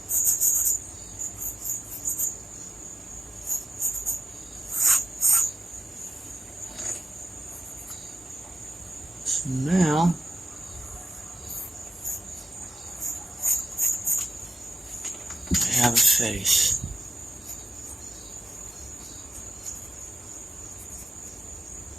So now I have a face.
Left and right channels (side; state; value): both; normal; correlation 0.93